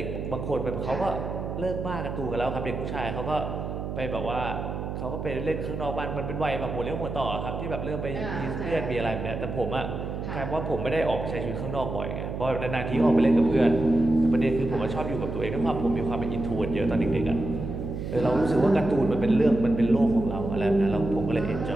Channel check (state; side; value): noise; right; hum, 5 dB below the sound